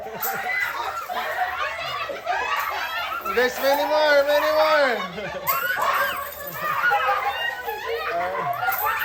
There's many more.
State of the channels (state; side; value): identical; both; correlation 1.00